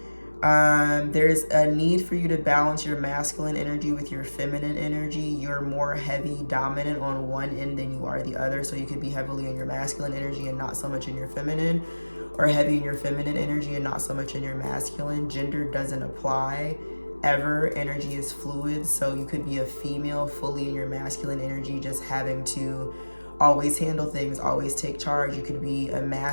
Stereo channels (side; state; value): both; inverted; correlation -1.00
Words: There's a need for you to balance your masculine energy with your feminine energy. You're more heavy dominant on one end than you are the other. So you could be heavily in your masculine energy and not so much in your feminine, or heavy in your feminine energy and not so much in your masculine. Gender doesn't apply ever. Energy is fluid. So you could be a female fully in your masculine energy, just having to always handle things, always take charge. You could be a